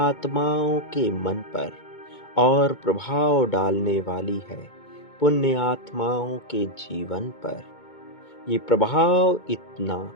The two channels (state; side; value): late; right; 2.2 ms